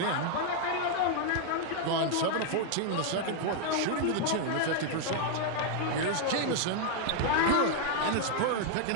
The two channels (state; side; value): different; both; correlation 0.00